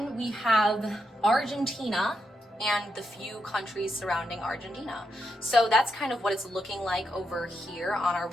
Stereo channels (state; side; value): normal; both; correlation 0.83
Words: we have Argentina and the few countries surrounding Argentina. So that's kind of what it's looking like over here on our